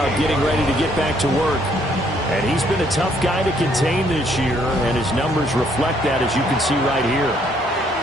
getting ready to get back to work. And he's been a tough guy to contain this year, and his numbers reflect that, as you can see right here.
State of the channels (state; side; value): normal; both; correlation 0.67